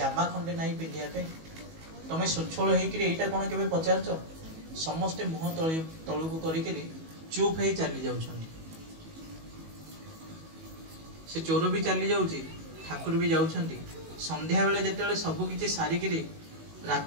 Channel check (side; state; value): left; late; 19 ms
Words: खंडे नाही पिंधिया पे तमे सुछळ हेई कि एटा कोन केबे पचारछ समस्त मुह तळु को करी कि चुप हे चली जाउछन से चोर भी चली जाउची ठाकुर भी जाउछंती। संध्या बेले जेतेले सब किछि सारी कि